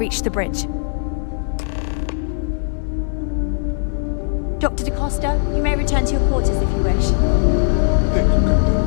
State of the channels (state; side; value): silent; right; digital silence